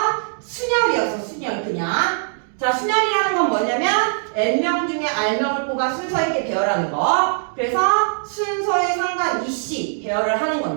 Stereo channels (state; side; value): silent; left; digital silence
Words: 순열이었어. 순열 그냥. 자, 순열이라는 건 뭐냐면 N명 중에 R명을 뽑아 순서 있게 배열하는 거. 그래서 순서에 상관이시 배열을 하는